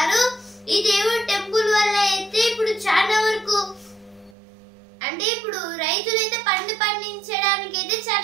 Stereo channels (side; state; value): left; drops out; at 4.4 s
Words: ఈ దేవుడి టెంపుల్ వల్ల అయితే ఇప్పుడు చాలా వరకు అంటే ఇప్పుడు రైతులు అయితే పండించడానికి అయితే